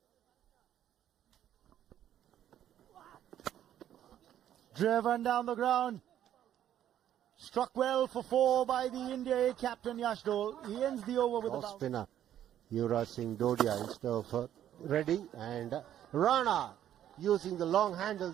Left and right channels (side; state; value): left; quieter; 11.1 dB